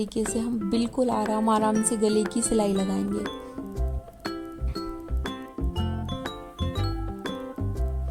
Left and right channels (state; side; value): identical; both; correlation 1.00